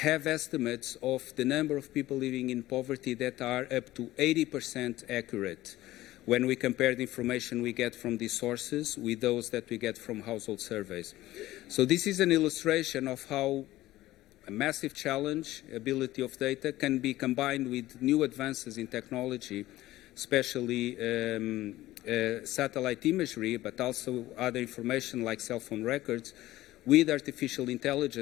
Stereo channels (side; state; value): right; quieter; 16.2 dB